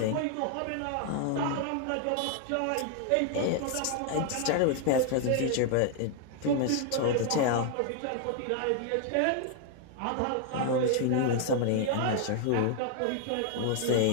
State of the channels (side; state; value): both; different; correlation 0.00